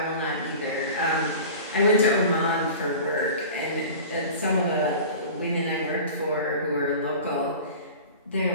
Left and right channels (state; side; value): inverted; both; correlation -0.37